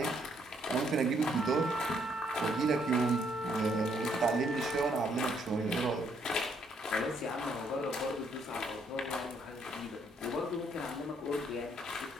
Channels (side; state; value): both; normal; correlation 0.70